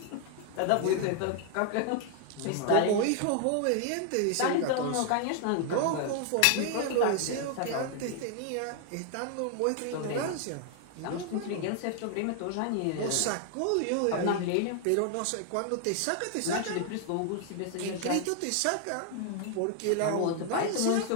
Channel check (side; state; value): both; different; correlation 0.00